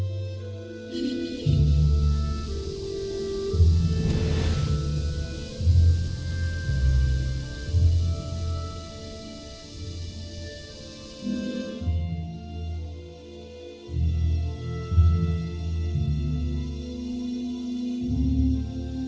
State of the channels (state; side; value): identical; both; correlation 1.00